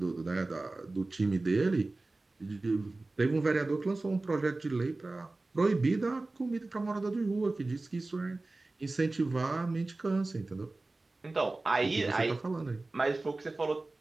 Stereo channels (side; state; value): left; quieter; 3.1 dB